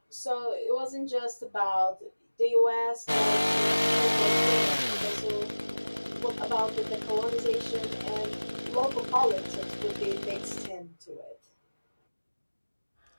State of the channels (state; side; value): inverted; both; correlation -1.00